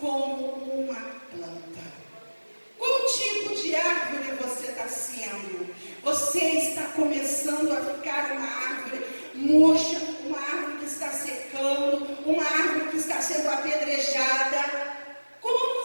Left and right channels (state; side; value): inverted; both; correlation -1.00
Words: como uma planta. Qual tipo de árvore você está sendo? Você está começando a ficar uma árvore murcha, uma árvore que está secando, uma árvore que está sendo apedrejada.